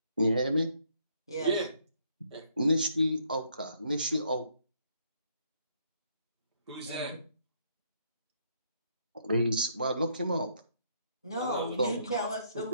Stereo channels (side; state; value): both; inverted; correlation -0.70